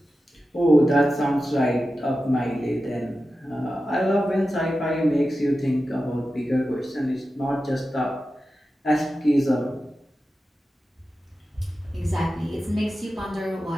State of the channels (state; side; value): normal; both; correlation 0.93